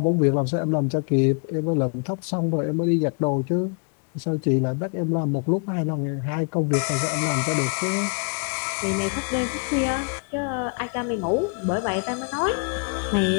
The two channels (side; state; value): right; quieter; 39.8 dB